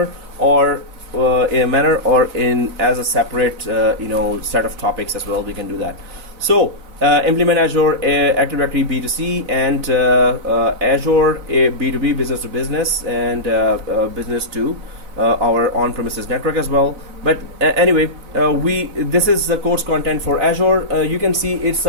or in a manner, or in as a separate set of topics as well. We can do that. So implement Azure Active Directory B2C and Azure B2B, business to business, and business to our on-premises network as well. But anyway, this is the course content for Azure. You can see it's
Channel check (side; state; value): left; late; 4.0 ms